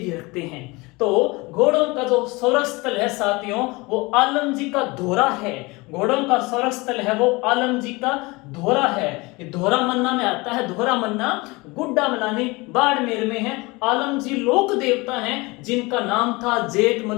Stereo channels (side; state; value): right; quieter; 24.2 dB